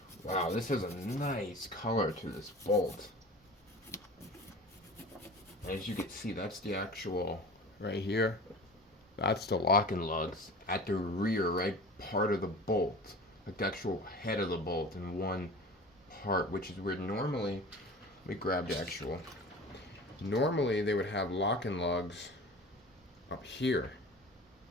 wow, this has a nice color to this bolt. As you can see, that's the actual, right here, that's the locking lugs at the rear, right part of the bolt, like the actual head of the bolt in one part, which is weird. Normally, let me grab the actual, normally they would have locking lugs up here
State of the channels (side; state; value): both; normal; correlation 0.38